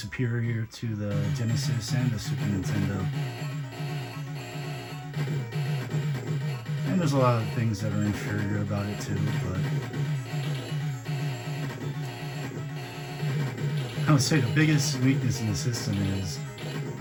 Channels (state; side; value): identical; both; correlation 1.00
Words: to the Genesis and the Super Nintendo. And there's a lot of things that are inferior about it too, but I would say the biggest weakness in the system is